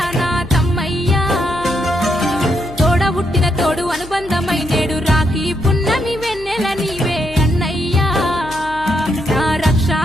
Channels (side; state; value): left; noise; hum, 17 dB below the sound